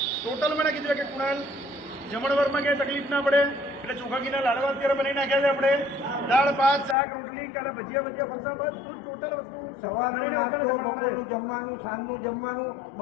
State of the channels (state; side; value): drops out; right; at 7.0 s